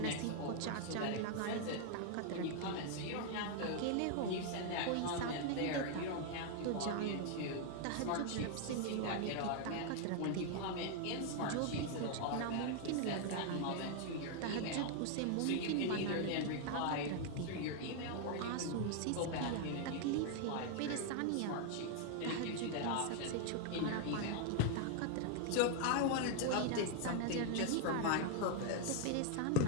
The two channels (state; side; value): different; both; correlation 0.00